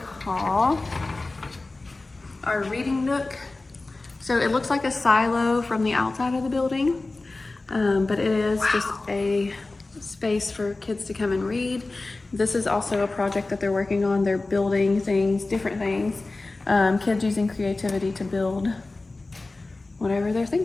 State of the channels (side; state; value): right; quieter; 3.2 dB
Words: call our reading nook. So it looks like a silo from the outside of the building, but it is just a space for kids to come and read. This is also a project that they're working on. They're building things, different things. Kids using creativity to build whatever they're